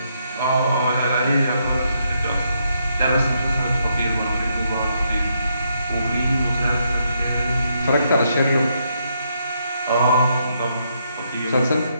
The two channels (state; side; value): inverted; both; correlation -0.77